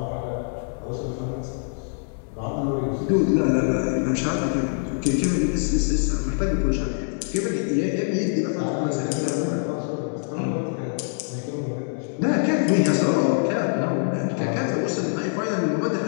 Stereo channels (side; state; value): right; silent; 62 dB below the other